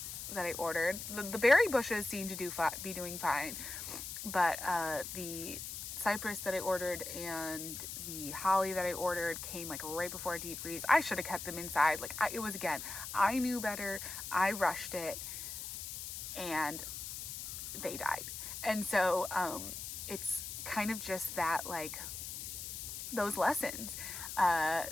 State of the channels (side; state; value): left; noise; hiss, 7 dB below the sound